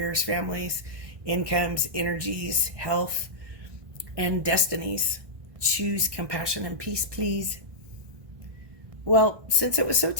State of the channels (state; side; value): late; left; 1.6 ms